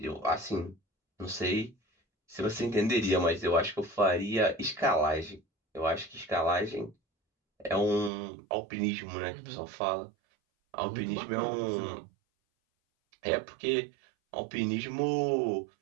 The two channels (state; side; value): drops out; left; at 8.1 s